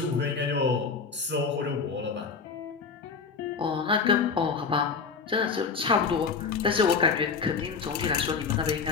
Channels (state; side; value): quieter; right; 5.3 dB